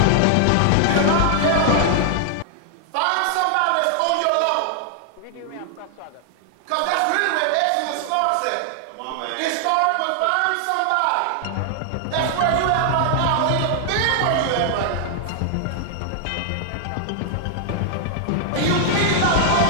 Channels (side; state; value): both; different; correlation 0.00